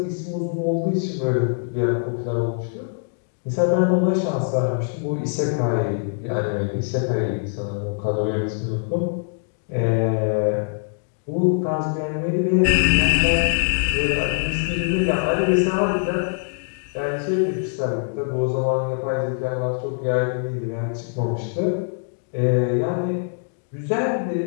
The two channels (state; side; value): silent; right; digital silence